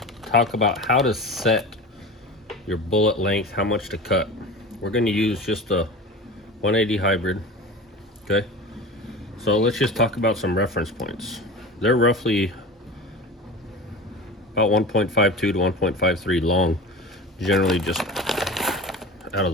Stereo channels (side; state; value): both; normal; correlation 0.33